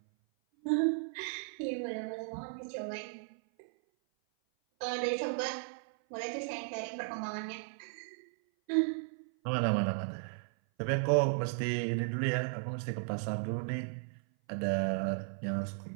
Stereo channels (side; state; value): left; silent; 54 dB below the other